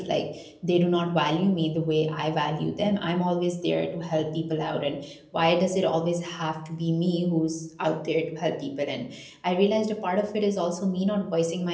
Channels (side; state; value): both; identical; correlation 1.00